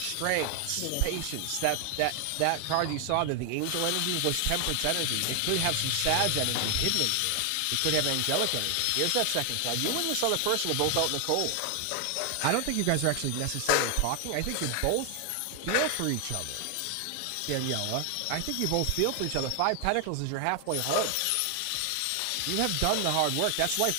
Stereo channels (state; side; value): different; both; correlation 0.00